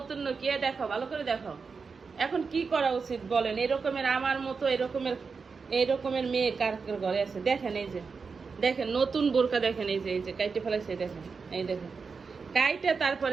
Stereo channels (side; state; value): left; quieter; 5.1 dB